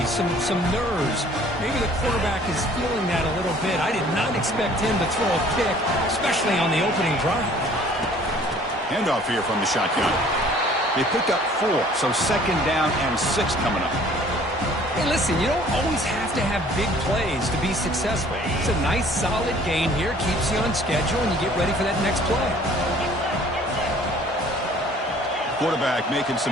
some nerves. Maybe the quarterback is feeling that a little bit. I did not expect him to throw a pick, especially on the opening drive. Handoff here from the shotgun. They picked up 4, so 2nd down and 6 coming up. Hey, listen, you don't always have to have big plays to be successful. It's a nice, solid gain here. Keeps you on schedule, and you get ready for that next play. Quarterback making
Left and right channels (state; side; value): normal; both; correlation 0.54